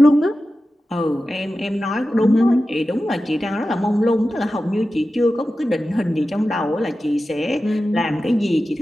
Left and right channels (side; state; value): both; normal; correlation 0.93